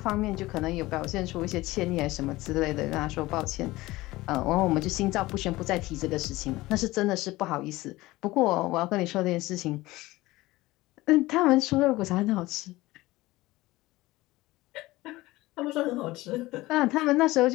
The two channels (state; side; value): quieter; right; 19.0 dB